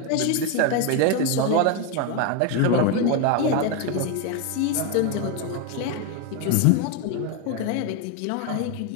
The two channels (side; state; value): both; different; correlation 0.02